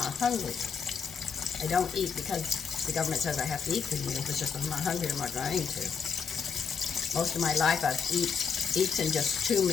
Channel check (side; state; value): right; quieter; 6.2 dB